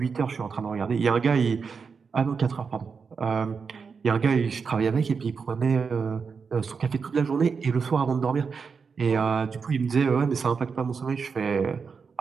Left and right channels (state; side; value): quieter; left; 5.5 dB